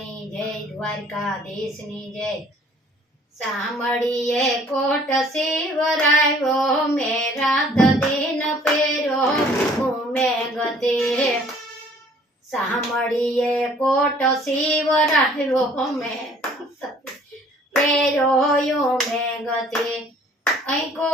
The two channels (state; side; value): normal; both; correlation 0.56